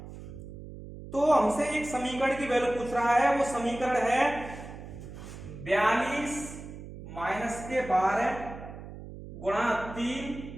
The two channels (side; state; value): right; noise; hum, 13 dB below the sound